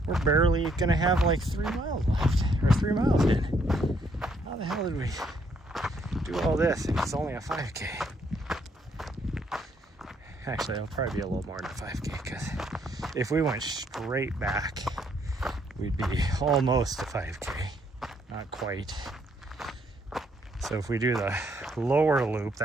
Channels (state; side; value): normal; both; correlation 0.70